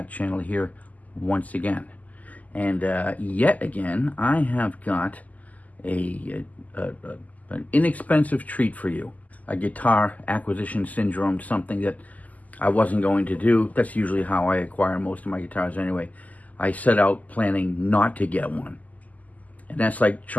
channel here once again. And yet again, I have got an inexpensive treat for you. A guitar acquisition syndrome, something that I wasn't going to do. That's usually how I acquire most of my guitars anyway. I set out planning not to get one. And that's like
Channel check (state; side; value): late; right; 0.077 ms